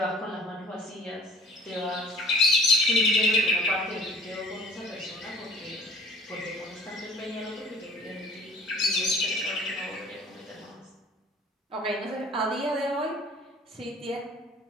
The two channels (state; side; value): normal; both; correlation 0.48